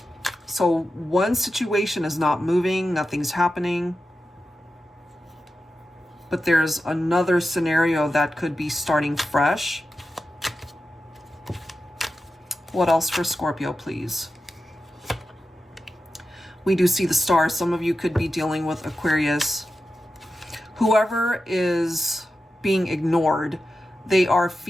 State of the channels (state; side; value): normal; both; correlation 0.91